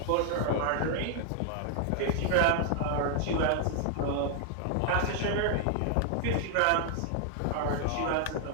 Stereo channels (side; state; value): both; different; correlation 0.00